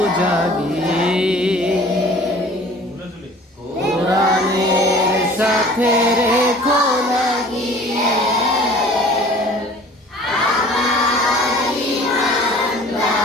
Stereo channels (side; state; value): both; normal; correlation 0.48